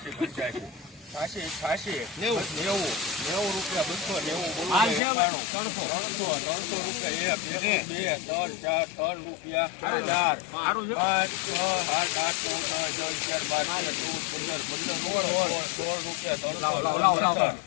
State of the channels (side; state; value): right; drops out; at 5.0 s